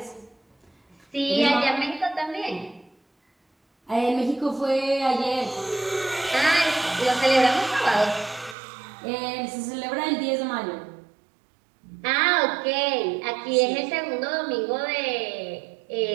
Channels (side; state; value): left; drops out; at 8.6 s